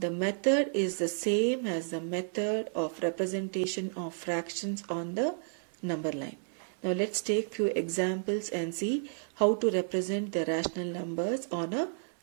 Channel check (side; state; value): left; silent; 57 dB below the other